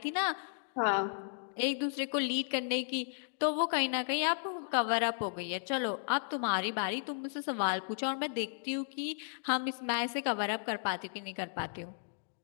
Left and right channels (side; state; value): right; silent; digital silence